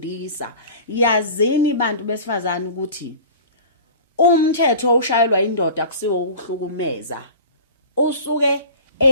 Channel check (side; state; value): both; inverted; correlation -0.39